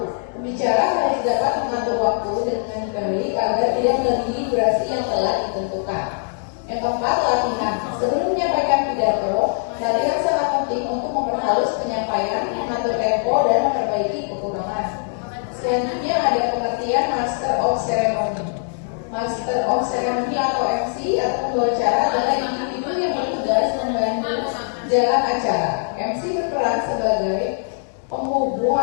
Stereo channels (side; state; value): right; silent; digital silence